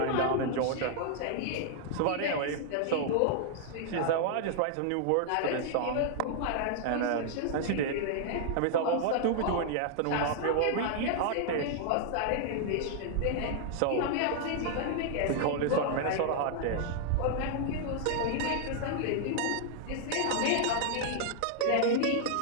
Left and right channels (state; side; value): different; both; correlation -0.01